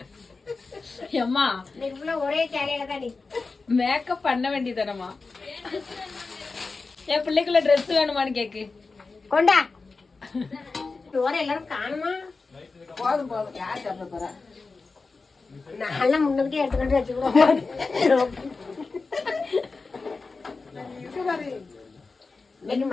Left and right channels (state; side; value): quieter; right; 4.1 dB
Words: அம்மா நீங்க ஒரே சேலையில தான் நீ மேக்கப் பண்ண வேண்டியதானம்மா? என் பிள்ளைக்குள்ள ட்ரெஸ் வேணுமான்னு கேக்கு. கொண்டா ஓர எல்லாரும் காணுமா? போதும் போதும், யார் சாப்பிட போறா? நான் முன்னுக்கிட்டே எடுத்துக்கிட்டு வச்சுக்கிறோம். இன்னைக்கு